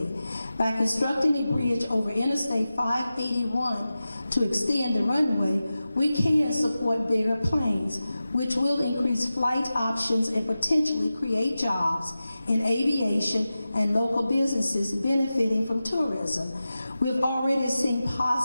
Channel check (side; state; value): both; inverted; correlation -0.94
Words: By constructing a bridge over Interstate 581 to extend the runway, we can support bigger planes, which will increase flight options and potentially create jobs in aviation and local businesses benefiting from tourism. We've already seen